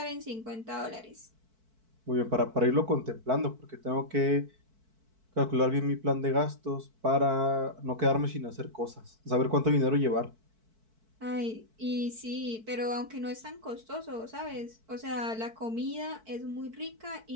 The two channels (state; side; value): late; left; 4.5 ms